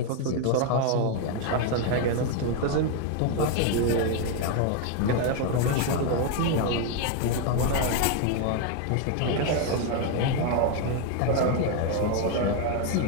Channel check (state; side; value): different; both; correlation 0.01